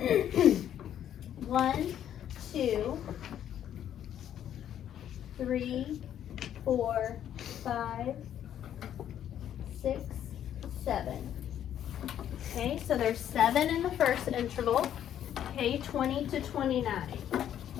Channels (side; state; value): right; quieter; 10.4 dB